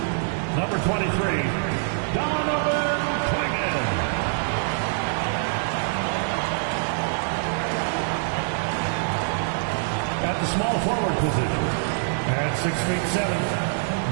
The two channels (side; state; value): left; silent; digital silence